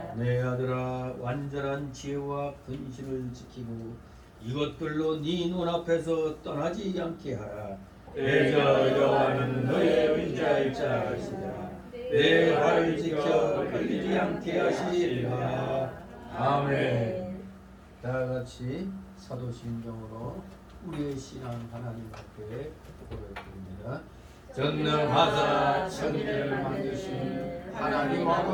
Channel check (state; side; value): identical; both; correlation 1.00